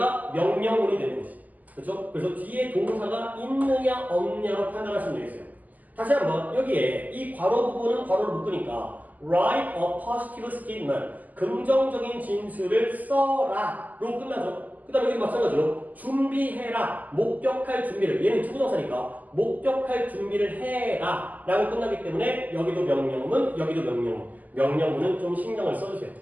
명령문이 되는 거지. 그렇죠? 그래서 뒤에 동사가 있느냐 없느냐로 판단하시면 되겠어요. 다시 한번 여기에 이 괄호 부분은 괄호를 묶으니까 write a positive statement 긍정적인 진술을 써라로 끝나죠. 그 다음에 여기도 마찬가지로 준비해라 목격할 준비를 얘는 투부정사니까 목격할 준비를 해라 라고 끝나기 때문에 여기도 명령문 여기도 명령문 명령문은 좀 신경을 써주세요.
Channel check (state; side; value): late; left; 0.080 ms